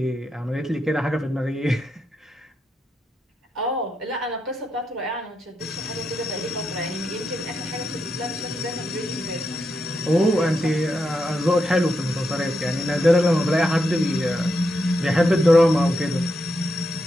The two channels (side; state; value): both; normal; correlation 0.83